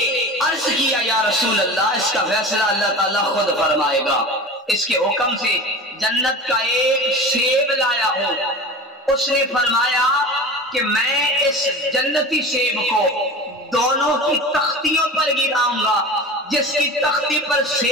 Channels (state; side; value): normal; both; correlation 0.34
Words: عرض کیا یا رسول اللہ اس کا فیصلہ اللہ تعالیٰ خود فرمائے گا۔ اس کے حکم سے جنت کا ایک سیب لایا ہوں، اس نے فرمایا کہ میں اس جنتی سیب کو دونوں کی تختیوں پر گراؤں گا، جس کی تختی پر